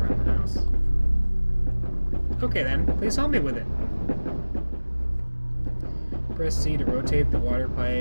the house. Okay then, please help me with it. Press C to rotate the water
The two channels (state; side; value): inverted; both; correlation -1.00